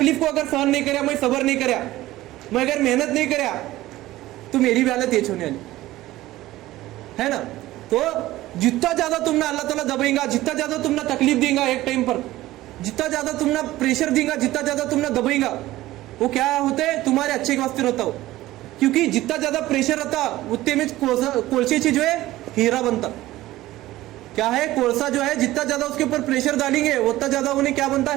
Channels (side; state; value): left; quieter; 16.4 dB